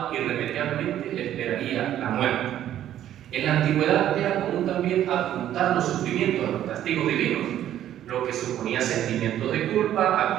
irremediablemente le esperaría la muerte. En la antigüedad era común también apuntar los sufrimientos a los castigos divinos, lo que suponía sentimientos de culpa,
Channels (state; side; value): quieter; left; 11.6 dB